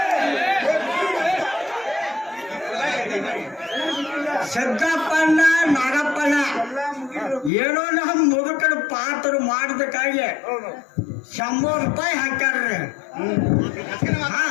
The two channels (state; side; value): drops out; right; at 7.5 s